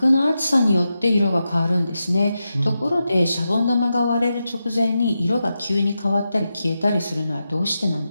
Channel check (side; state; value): both; inverted; correlation -0.89